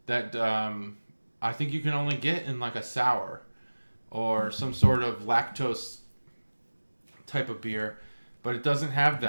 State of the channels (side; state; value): both; inverted; correlation -1.00